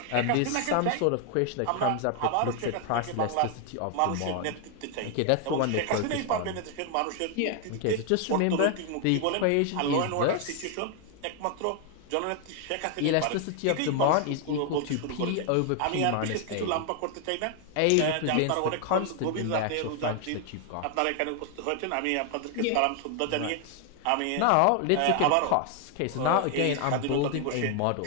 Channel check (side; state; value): both; different; correlation 0.00